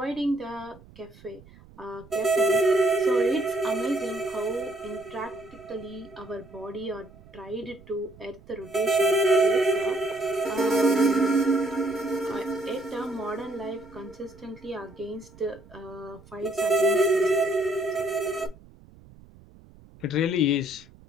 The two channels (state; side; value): noise; right; rumble, 23 dB below the sound